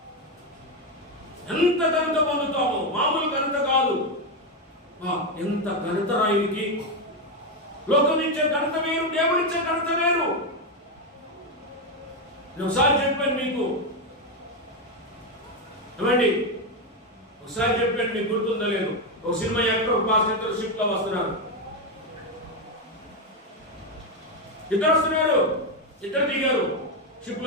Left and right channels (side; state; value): both; normal; correlation 0.08